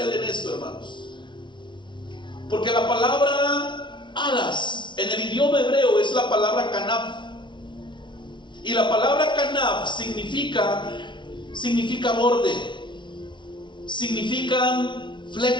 en esto, hermanos. Porque la palabra alas en el idioma hebreo es la palabra kanaf. Y la palabra kanaf significa borde, significan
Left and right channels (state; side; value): late; right; 0.23 ms